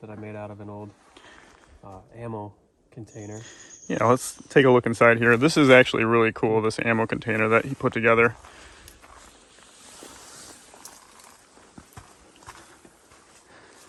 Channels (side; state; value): both; identical; correlation 1.00